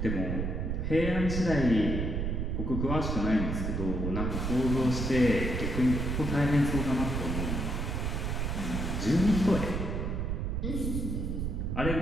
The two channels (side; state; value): right; noise; rumble, 1 dB below the sound